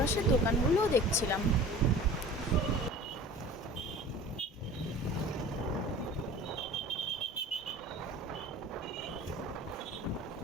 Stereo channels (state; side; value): normal; both; correlation 0.42